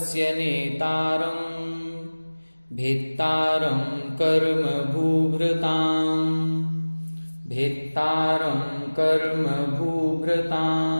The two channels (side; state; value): both; inverted; correlation -1.00